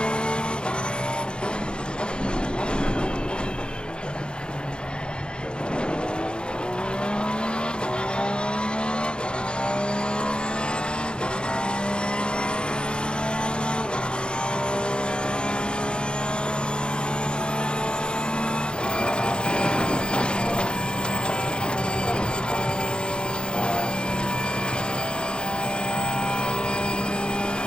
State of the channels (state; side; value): late; right; 0.051 ms